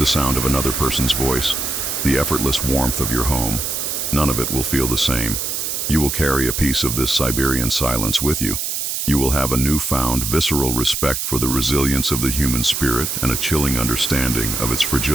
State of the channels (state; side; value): noise; right; hiss, 2 dB below the sound